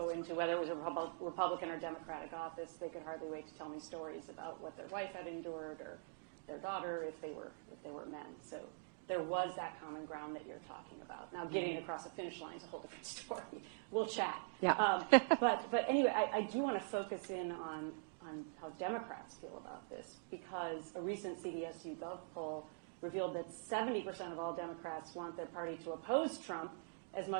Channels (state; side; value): silent; left; digital silence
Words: into whether it was a Republican or Democratic office, they could hardly wait to tell me stories about what their wife had endured or their daughter if they were men. So there was that common ground that you're talking about. Now, getting across the finish line is a whole different story. We'll chat. Yeah. But anyway, I do want to focus in on how Democrats feel about this, because a recent CBS YouGov poll revealed that 70% of all Democrats want their party to oppose Trump as